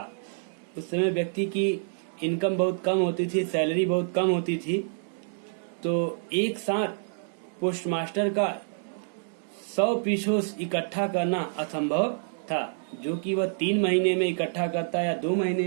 उस समय व्यक्ति की इनकम बहुत कम होती थी, सैलरी बहुत कम होती थी, तो एक साथ पोस्टमास्टर का 100 पीसोस इकट्ठा करना असंभव था, जो कि वह 3 महीने में इकट्ठा करता या 2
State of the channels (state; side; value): silent; left; 60 dB below the other